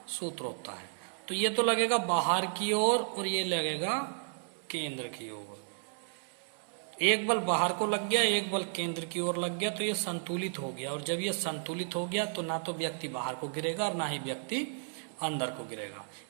सूत्र होता है। तो ये तो लगेगा बाहर की ओर और ये लगेगा केंद्र की ओर। एक बल बाहर को लग गया, एक बल केंद्र की ओर लग गया, तो ये संतुलित हो गया। और जब ये संतुलित हो गया तो ना तो व्यक्ति बाहर को गिरेगा और ना ही व्यक्ति अंदर को गिरेगा।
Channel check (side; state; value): left; silent; digital silence